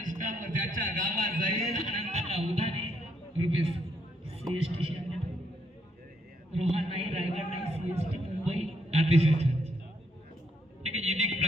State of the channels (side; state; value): both; normal; correlation 0.74